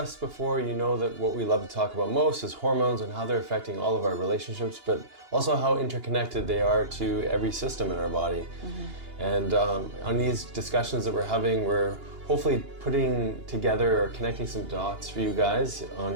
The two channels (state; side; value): late; left; 2.8 ms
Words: before, you know that what we love to talk about most is hormones and how they're affecting all of our relationships, but also how interconnected they are to every system in our body. And on these discussions that we're having, we're hopefully putting together or connecting some dots for you guys